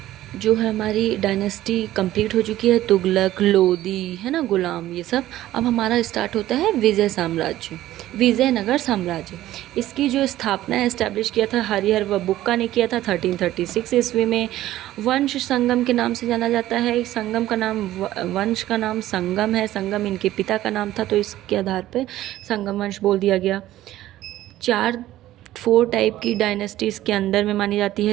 जो है हमारी डायनेस्टी कंप्लीट हो चुकी है, तुगलक, लोदी, है ना, गुलाम, ये सब। अब हमारा स्टार्ट होता है विजयनगर साम्राज्य। इसकी जो स्थापना एस्टैब्लिश किया था हरिहर व बुक्का ने किया था 1336 ईस्वी में। वंश संगम के नाम से जाना जाता है। संगम का नाम, वंश का नाम संगम है। संगम इनके पिता का नाम था, तो इसके आधार पर संगम वंश बोल दिया गया। 4 टाइप की डायनेस्टीज़ के अंदर में मानी जाती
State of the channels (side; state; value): left; quieter; 14.5 dB